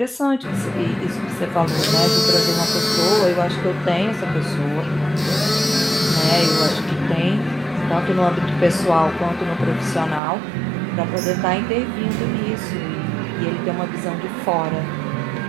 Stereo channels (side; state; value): left; drops out; at 10.2 s